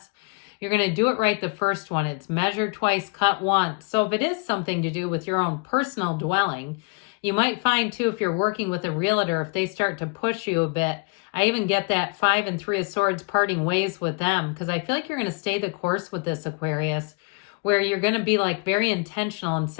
You're going to do it right the first one. It's measure twice, cut once. So if it is something to do with your own personal dwelling, you might find too, if you're working with a realtor, if they start to push you a bit, I even get that 5 and 3 of Swords parting ways with them, because I feel like you're going to stay the course with this, Aquarius, where you're going to be like very intentional and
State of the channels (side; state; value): right; quieter; 31.0 dB